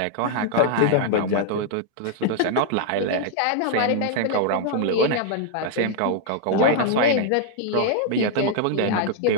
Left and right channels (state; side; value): different; both; correlation 0.00